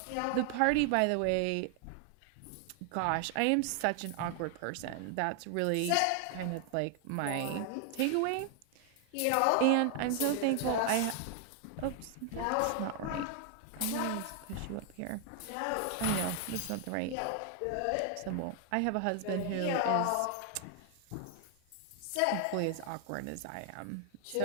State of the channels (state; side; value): different; both; correlation 0.00